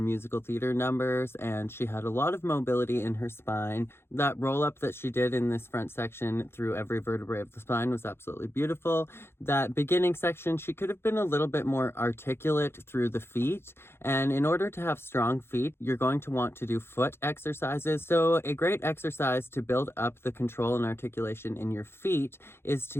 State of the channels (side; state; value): right; late; 0.12 ms